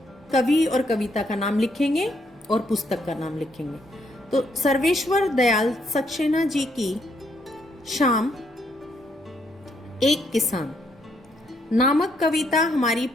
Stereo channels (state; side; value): normal; both; correlation 0.73